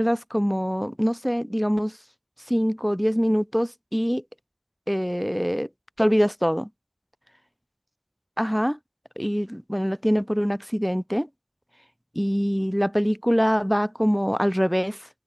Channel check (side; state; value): both; identical; correlation 1.00